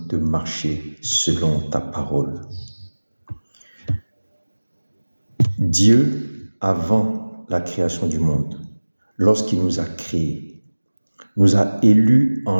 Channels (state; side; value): inverted; both; correlation -1.00